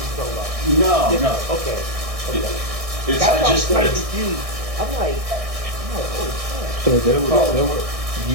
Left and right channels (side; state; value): left; late; 1.6 ms